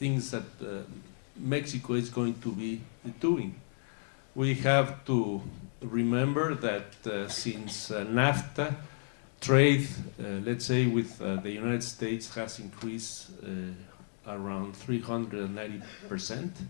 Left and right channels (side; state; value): right; silent; digital silence